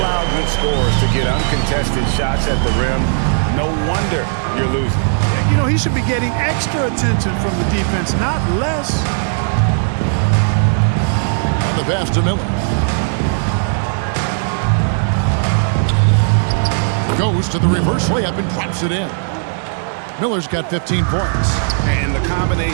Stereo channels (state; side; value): silent; left; digital silence